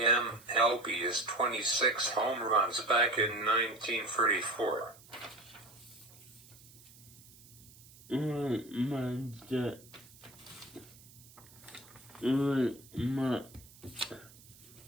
MLB is 26 home runs back in 1934.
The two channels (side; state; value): right; noise; hiss, 22 dB below the sound